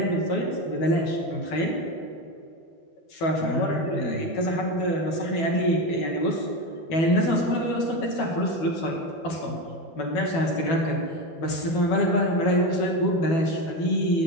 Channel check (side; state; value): right; late; 12 ms